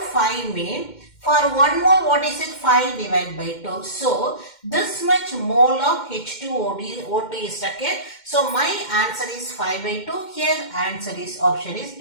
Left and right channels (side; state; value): right; late; 2.1 ms